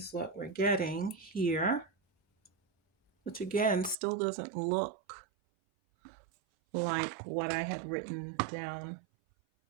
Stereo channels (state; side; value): drops out; left; at 4.0 s